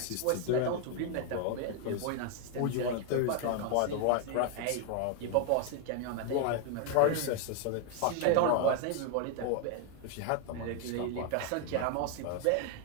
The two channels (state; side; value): different; both; correlation 0.00